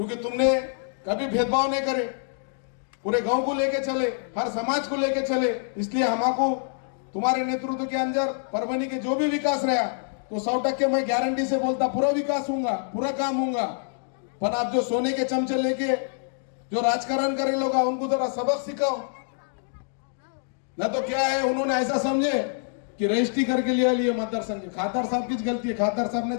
तुमने कभी भेदभाव नहीं करे, पूरे गांव को लेके चले, हर समाज को लेके चले। इसलिए हमको तुम्हारे नेतृत्व के अंदर परवनी के जो भी विकास रहा तो 100% मैं गारंटी से बोलता पूरा विकास होगा, पूरा काम होगा। पर आप जो सोने के चमचे लेके जो राजकारण करे लोग, उनको जरा सबक सिखाओ, ना तो क्या है उन्होंने ऐसा समझे कि रजिस्ट्री करके लिए मतदार संघ। खादर साहब की गलती है, खादर साहब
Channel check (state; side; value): silent; right; digital silence